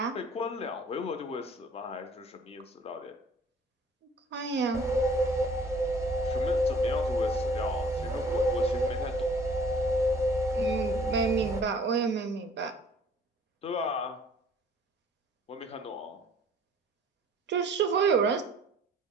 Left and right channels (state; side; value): normal; both; correlation 0.54